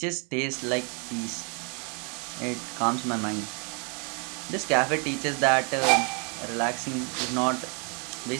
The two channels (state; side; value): quieter; left; 35.7 dB